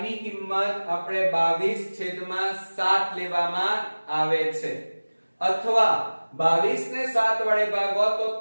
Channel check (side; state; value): both; inverted; correlation -1.00